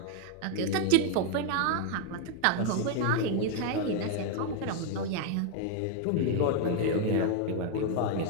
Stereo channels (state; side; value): different; both; correlation 0.01